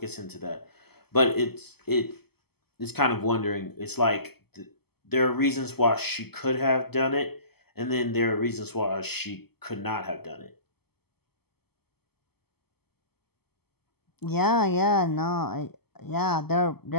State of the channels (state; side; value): late; right; 0.96 ms